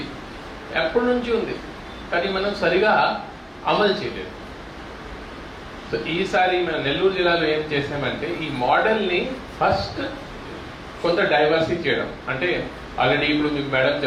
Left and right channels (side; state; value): both; identical; correlation 1.00